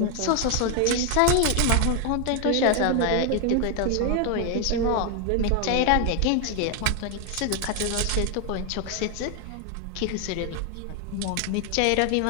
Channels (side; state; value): both; different; correlation 0.01